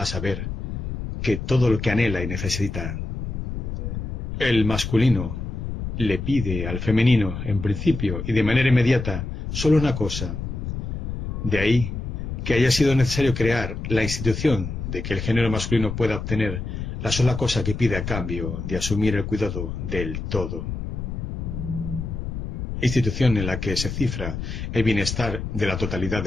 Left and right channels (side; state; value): left; noise; rumble, 5 dB below the sound